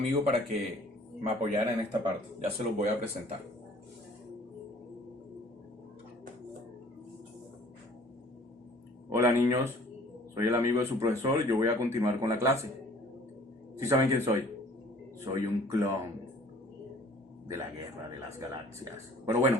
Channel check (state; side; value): normal; both; correlation 0.53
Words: para que me apoyara en esta parte. Ya se los voy a presentar. Hola, niños. Soy el amigo de su profesor y yo voy a continuar con la clase. ¿Sí saben quién soy? Soy un clon de la Guerra de las Galaxias. Pero